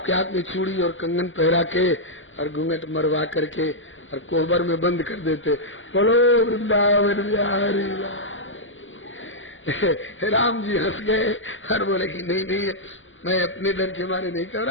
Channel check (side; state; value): right; late; 0.57 ms